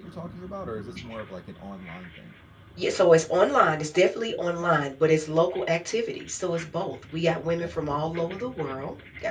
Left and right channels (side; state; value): both; identical; correlation 1.00